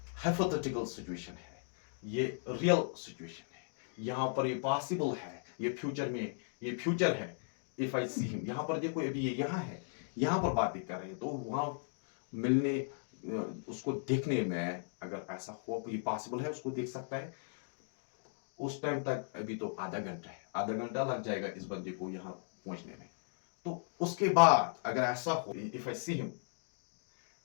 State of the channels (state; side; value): silent; right; digital silence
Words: हाइपोथेटिकल सिचुएशन है, ये रियल सिचुएशन है। यहां पर ये पॉसिबल है, ये फ्यूचर में, ये फ्यूचर है। इफ आई सी हिम, यहां पर देखो अभी ये यहां है, यहां पर बातें कर रहे हैं, तो वहां मिलने, उसको देखने में अगर ऐसा हो, ये पॉसिबल है, उसको देख सकता है, उस टाइम तक अभी तो आधा घंटा है, आधा घंटा लग जाएगा इस बंदे को यहां पहुंचने में। तो उसके बाद अगर ऐसा हो, इफ आई सी हिम,